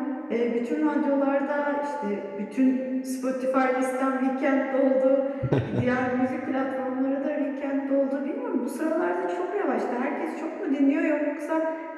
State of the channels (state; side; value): identical; both; correlation 1.00